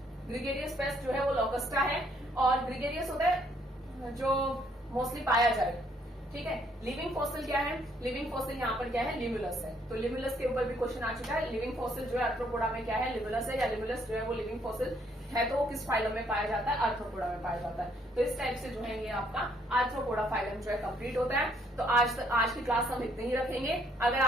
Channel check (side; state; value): both; normal; correlation 0.68